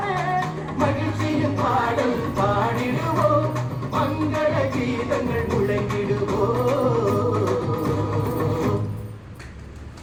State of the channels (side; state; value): both; identical; correlation 1.00